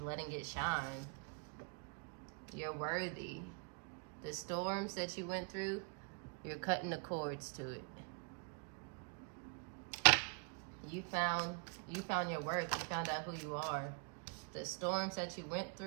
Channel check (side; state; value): left; quieter; 37.7 dB